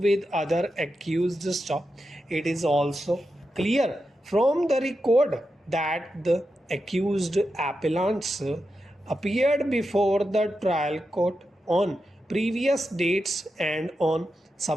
with other accused stop. It is also clear from the record that the accused appellants appeared before the trial court on previous dates, and on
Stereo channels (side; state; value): both; normal; correlation 0.88